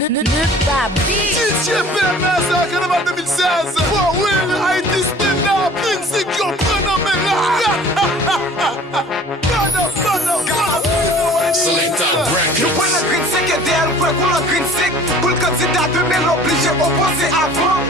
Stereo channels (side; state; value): both; normal; correlation 0.48